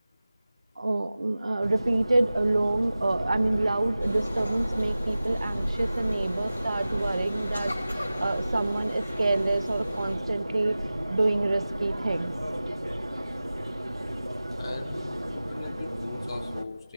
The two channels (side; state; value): both; inverted; correlation -0.96